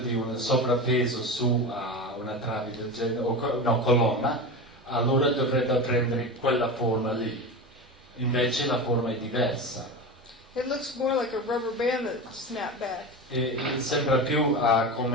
un sovrappeso su una trave del genere, o colonna, allora dovrebbe prendere quella forma lì. Invece la forma è diversa. It looks more like a rubber band that snapped back. E sembra più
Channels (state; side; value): normal; both; correlation 0.25